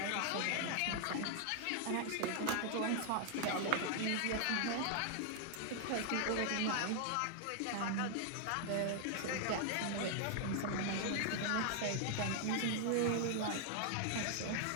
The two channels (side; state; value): both; different; correlation 0.00